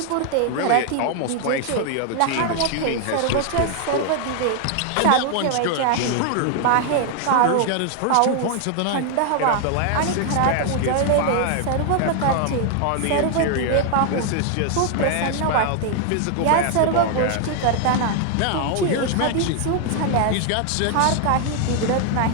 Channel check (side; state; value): both; different; correlation 0.00